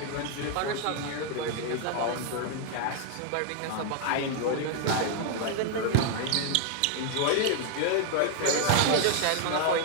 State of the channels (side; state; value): both; different; correlation 0.00